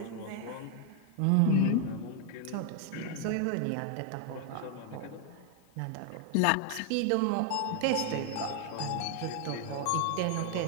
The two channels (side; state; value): both; different; correlation 0.00